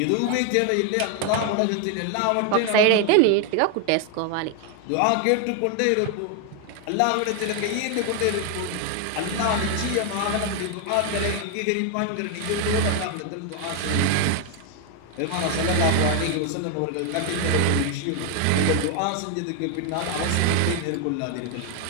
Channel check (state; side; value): different; both; correlation 0.01